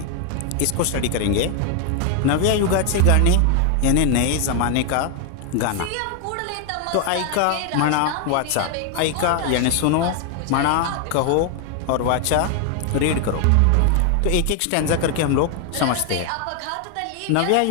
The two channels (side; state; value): both; different; correlation 0.00